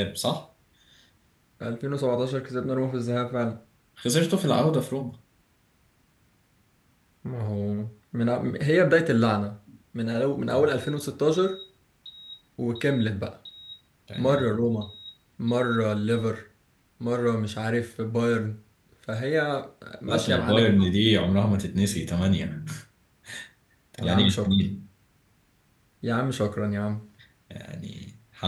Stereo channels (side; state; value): both; identical; correlation 1.00